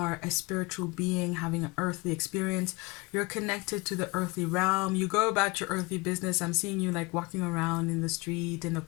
a spiritual being having an earthly experience. You're connected to the earthly realm. You go about your earthly business. I'm seeing you like walking around in the street, in the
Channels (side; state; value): right; quieter; 24.7 dB